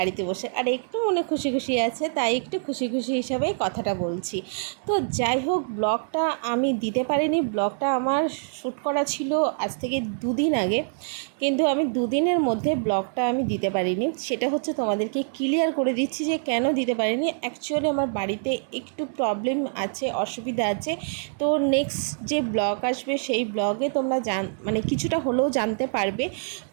বসে, আর একটু মনে খুশি খুশি আছে, তাই একটু খুশি খুশি হিসাবে কথাটা বলছি। তো যাই হোক, ব্লগটা আমি দিতে পারিনি। ব্লগটা আমার শ্যুট করা ছিল আজ থেকে 2 দিন আগে, কিন্তু আমি 2 দিনের মধ্যে ব্লগটা আমি দিতে পারিনি। সেটা হচ্ছে তোমাদেরকে ক্লিয়ার করে দিচ্ছি যে কেন দিতে পারিনি। অ্যাকচুয়ালি আমার বাড়িতে একটু প্রবলেম আছে, অসুবিধা আছে। তো নেক্সট যে ব্লগ আসবে সেই ব্লগে তোমরা মানে কিছুটা হলেও জানতে পারবে।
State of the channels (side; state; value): left; silent; digital silence